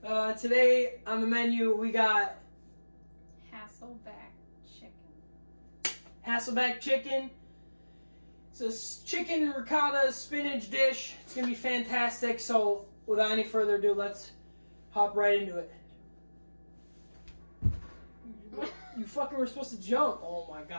Today on the menu we got HASSELBACK chicken. HASSELBACK chicken. It's a chicken ricotta spinach dish. It's gonna be fantastic. So, without any further ado, let's hop right into it. You fucking were supposed to jump. Oh my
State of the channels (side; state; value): both; inverted; correlation -1.00